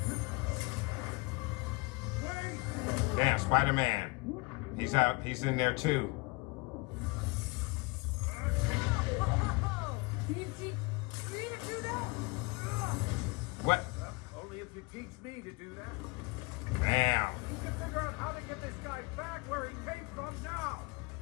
Damn, Spider-Man. He's out. He's in there too. You need to do that? What? Only if you teach me to do that. Damn. We can figure out how to get this guy back where he came from now.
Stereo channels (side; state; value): right; quieter; 26.2 dB